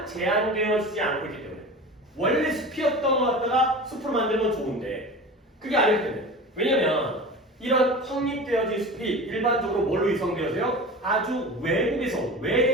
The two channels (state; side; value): normal; both; correlation 0.33